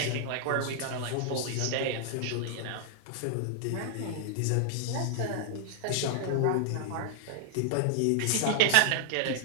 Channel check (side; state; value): both; different; correlation -0.01